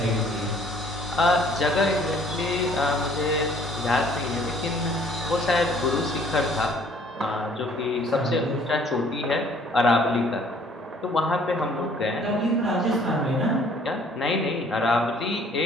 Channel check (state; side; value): normal; both; correlation 0.57